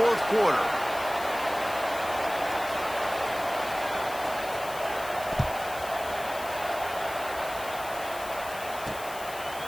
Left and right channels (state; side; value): noise; left; hiss, 14 dB below the sound